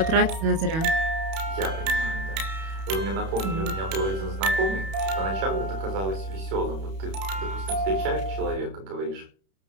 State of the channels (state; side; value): late; left; 31 ms